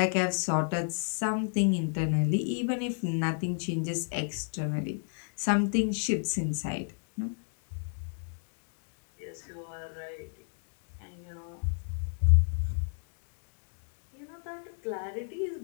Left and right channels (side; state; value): right; silent; 56 dB below the other